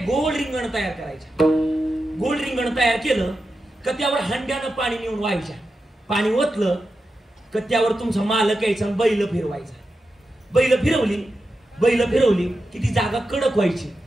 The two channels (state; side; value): normal; both; correlation 0.90